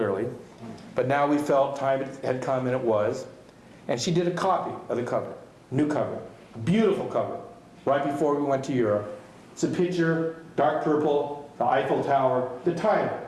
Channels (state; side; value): identical; both; correlation 1.00